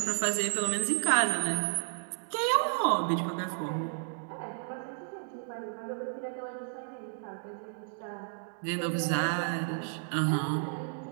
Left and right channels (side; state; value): left; silent; digital silence